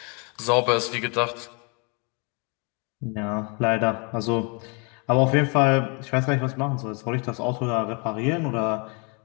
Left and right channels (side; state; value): right; quieter; 33.6 dB